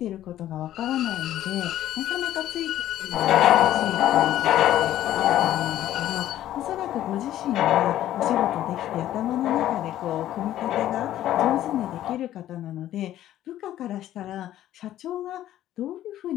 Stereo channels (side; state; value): right; quieter; 12.9 dB